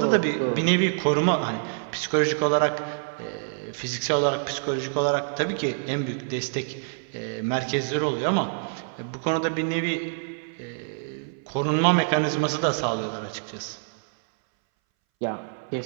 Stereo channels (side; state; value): left; silent; 61 dB below the other